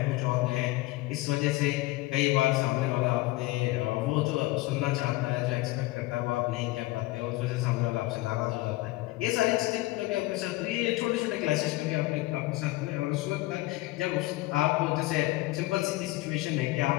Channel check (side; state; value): right; quieter; 19.3 dB